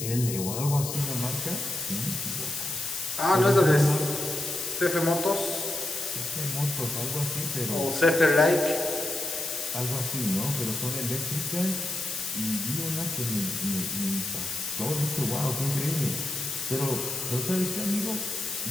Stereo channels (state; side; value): noise; left; hiss, 5 dB below the sound